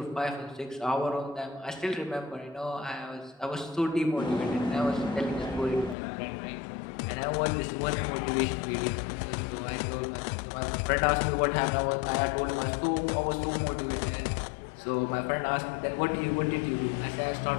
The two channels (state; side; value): drops out; right; at 6.0 s